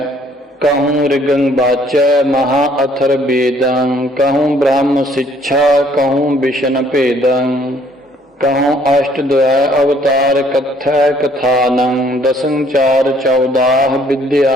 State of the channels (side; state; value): both; normal; correlation 0.62